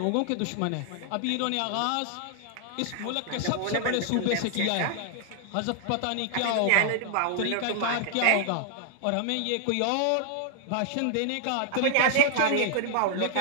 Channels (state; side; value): different; both; correlation 0.00